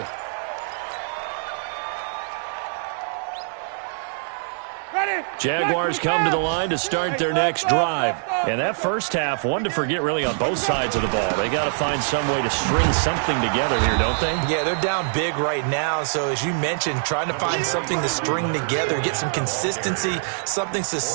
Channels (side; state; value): left; silent; digital silence